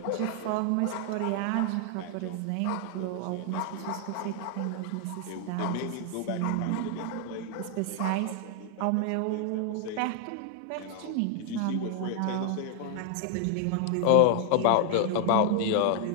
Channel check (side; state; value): both; different; correlation 0.00